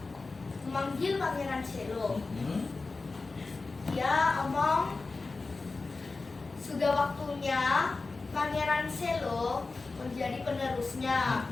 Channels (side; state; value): right; quieter; 3.8 dB